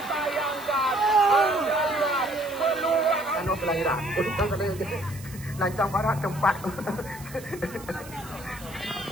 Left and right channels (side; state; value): right; noise; hiss, 18 dB below the sound